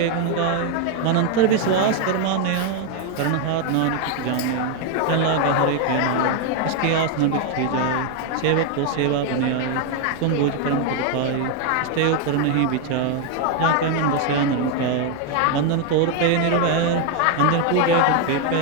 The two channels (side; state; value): both; different; correlation 0.01